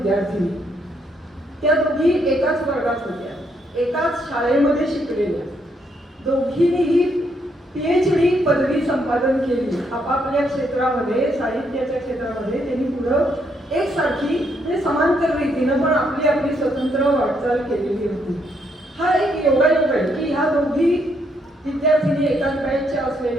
त्या दोघी एकाच वर्गात होत्या, एकाच शाळेमध्ये शिकलेल्या. दोघींनीही PhD पदवी संपादन केली आपापल्या क्षेत्रामध्ये, साहित्याच्या क्षेत्रामध्ये. त्यांनी पुढं एकसारखी म्हणजे समांतर रीतीनं पण आपली आपली स्वतंत्र वाटचाल केलेली होती. हा एक योगायोग आहे की ह्या दोघी विद्यार्थिनी एकाच बॅचच्या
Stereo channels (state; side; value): normal; both; correlation 0.74